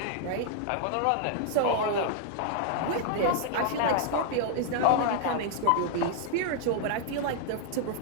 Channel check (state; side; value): different; both; correlation 0.00